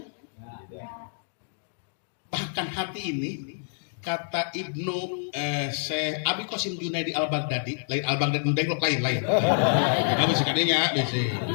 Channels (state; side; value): silent; right; digital silence